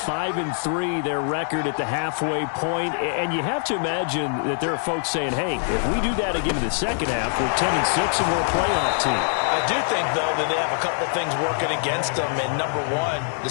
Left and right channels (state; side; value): silent; right; digital silence